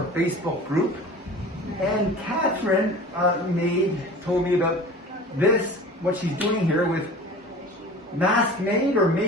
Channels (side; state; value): both; normal; correlation 0.39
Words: Facebook group. And Katherine told me about this, what she's doing here with MaskMade or